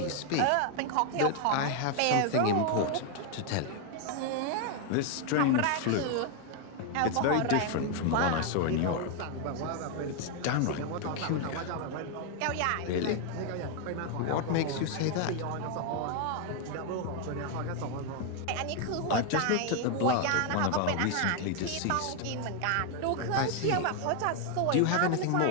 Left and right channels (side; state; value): both; different; correlation 0.01